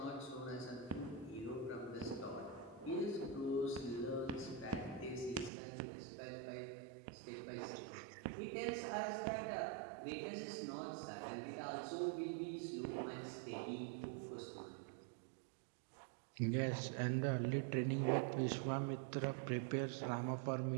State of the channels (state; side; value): drops out; left; at 5.5 s